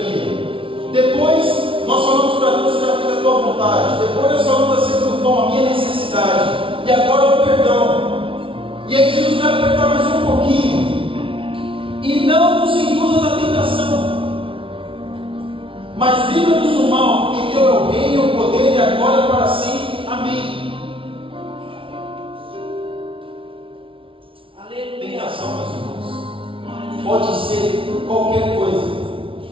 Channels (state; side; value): late; left; 0.25 ms